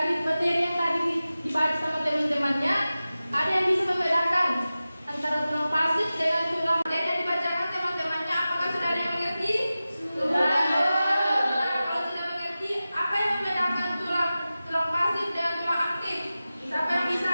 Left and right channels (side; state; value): both; inverted; correlation -0.95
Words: materi yang tadi dibahas sama teman-temannya, ada yang bisa membedakan antara tulang pasif dengan tulang yang dibacakan teman-temannya. Apakah sudah ada yang mengerti? Sudah. Nah, kalau sudah mengerti, apa yang membedakan tulang pasif dengan tulang aktif? Siapa yang bisa?